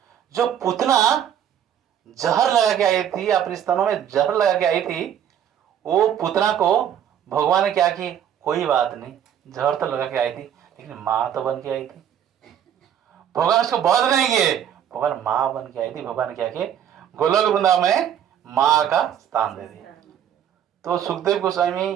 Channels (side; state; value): left; quieter; 9.5 dB